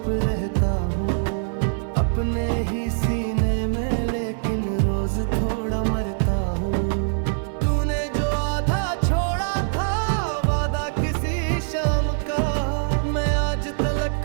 रहता हूँ, अपने ही सीने में लेकिन रोज थोड़ा मरता हूँ। तूने जो आधा छोड़ा था वादा किसी शाम का, मैं आज तलक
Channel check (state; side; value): silent; left; 63 dB below the other